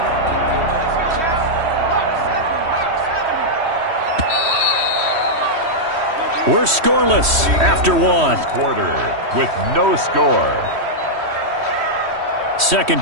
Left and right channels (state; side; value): late; left; 3.1 ms